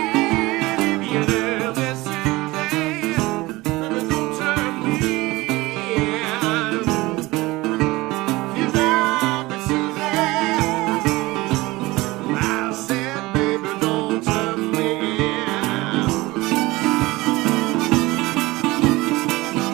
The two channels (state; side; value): quieter; left; 20.7 dB